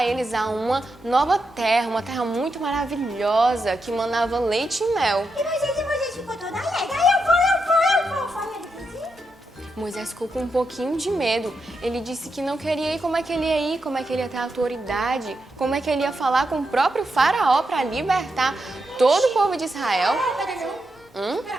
eles a uma nova terra, uma terra muito maravilhosa que manava leite e mel. E Moisés ficou toda alegre. Aí eu vou. Falei, ele fez isso? Moisés ficou com um pouquinho de medo. Ele disse que não queria ir. Como é que ele ia ir? Como é que ele ia ter autoridade? Como é que ele ia falar com o próprio faraó para libertar todo o povo de Israel? Cadê meu? Pera,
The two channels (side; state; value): both; normal; correlation 0.85